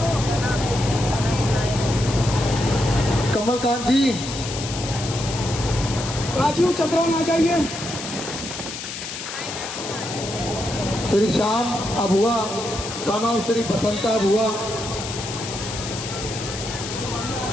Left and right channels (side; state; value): left; noise; hiss, 8 dB below the sound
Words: Kamalkant ji, Rajiv Chandran आ जाइए। Shri Shyam Abua, son of Shri Basanta Abua.